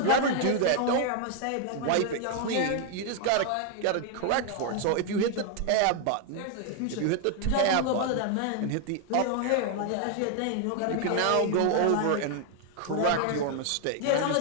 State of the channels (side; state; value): both; different; correlation 0.00